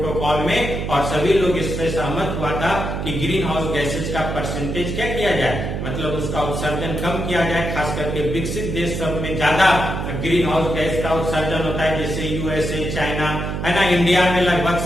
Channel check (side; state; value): right; noise; hum, 3 dB below the sound